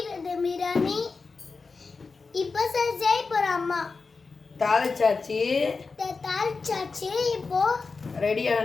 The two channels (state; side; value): quieter; right; 4.4 dB